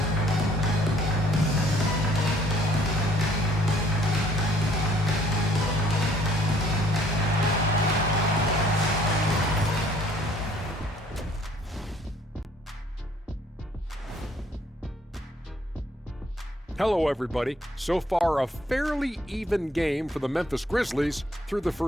Hello, everybody. So far, a fairly even game for the Memphis Grizzlies through the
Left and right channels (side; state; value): both; normal; correlation 0.60